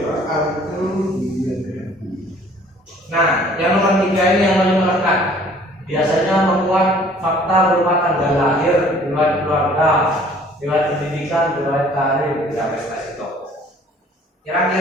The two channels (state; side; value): normal; both; correlation 0.55